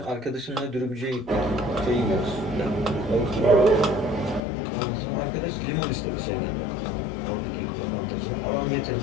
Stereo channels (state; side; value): drops out; right; at 4.4 s